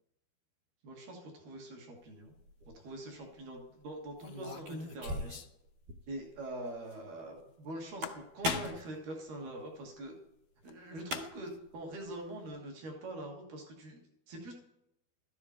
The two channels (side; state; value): left; late; 12 ms